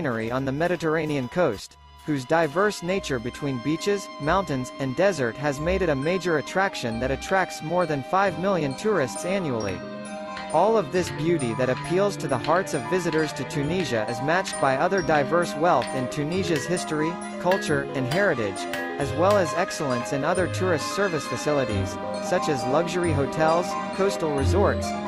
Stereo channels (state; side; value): identical; both; correlation 1.00